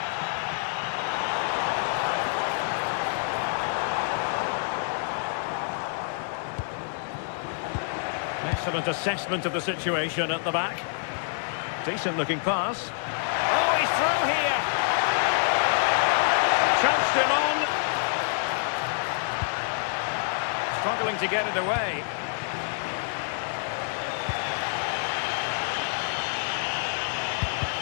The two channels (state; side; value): silent; right; 60 dB below the other